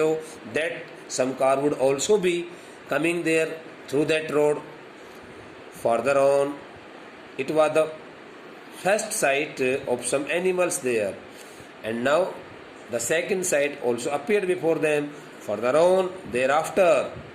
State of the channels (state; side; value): identical; both; correlation 1.00